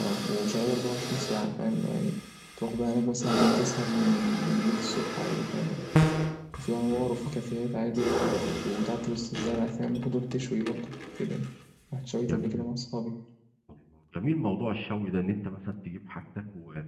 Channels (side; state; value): both; identical; correlation 1.00